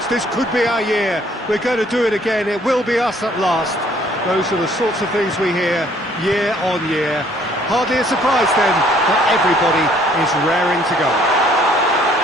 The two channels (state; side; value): normal; both; correlation 0.61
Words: This could be our year. We're going to do it again. It will be us at last. Those are the sorts of things we hear year on year. Hardly a surprise then that everybody is raring to go.